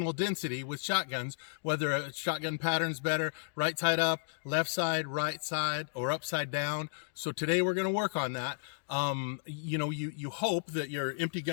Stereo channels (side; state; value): right; silent; digital silence